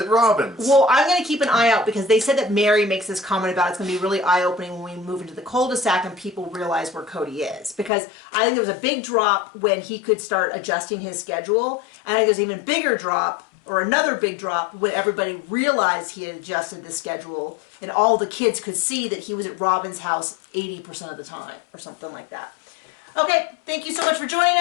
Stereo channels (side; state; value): right; drops out; at 7.9 s